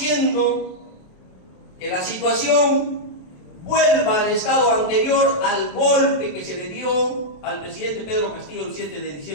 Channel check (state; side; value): late; right; 27 ms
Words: que la situación vuelva al estado anterior al golpe que se le dio al presidente Pedro Castillo el 7 de